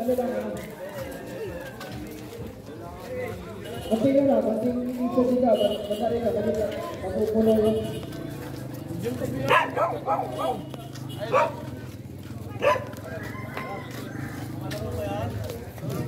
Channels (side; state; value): both; identical; correlation 1.00